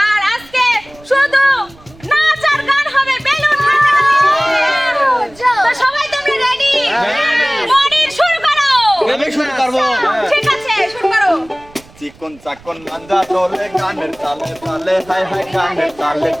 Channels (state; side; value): noise; right; rumble, 24 dB below the sound